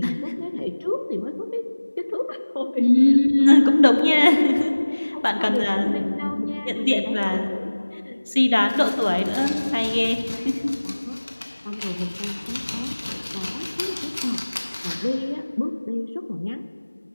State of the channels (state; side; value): inverted; both; correlation -1.00